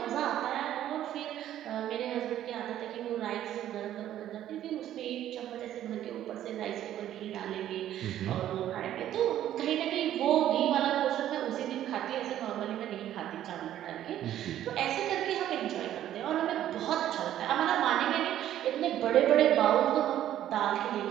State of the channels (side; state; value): left; quieter; 11.9 dB